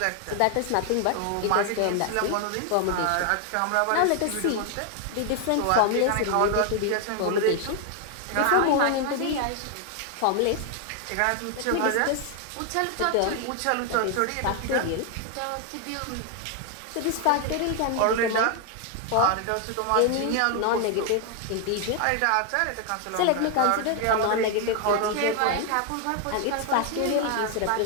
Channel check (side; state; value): both; different; correlation 0.00